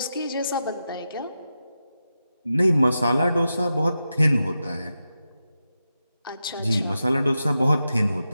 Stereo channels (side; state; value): both; inverted; correlation -0.90